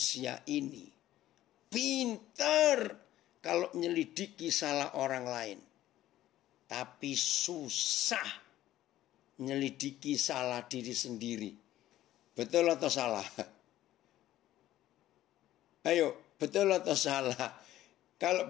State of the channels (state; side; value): quieter; right; 14.0 dB